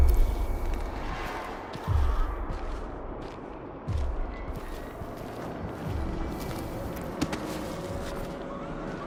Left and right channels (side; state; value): both; identical; correlation 1.00